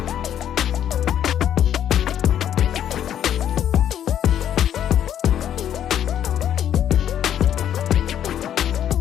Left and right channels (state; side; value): quieter; right; 10.2 dB